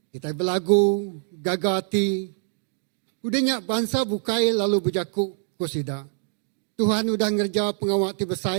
kita berlagu, gagati. Udahnya bangsa bukai lalu berjaku kusida. Tuhan udah ngerja pengawak ti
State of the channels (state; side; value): silent; left; digital silence